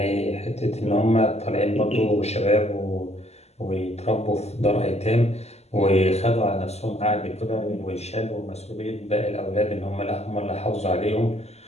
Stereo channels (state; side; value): late; right; 0.31 ms